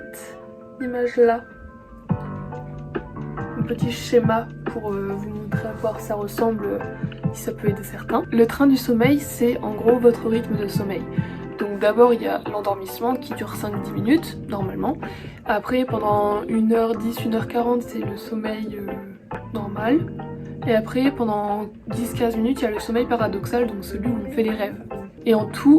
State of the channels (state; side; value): identical; both; correlation 1.00